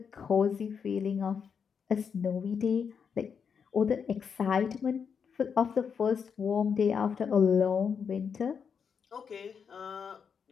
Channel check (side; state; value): right; quieter; 6.6 dB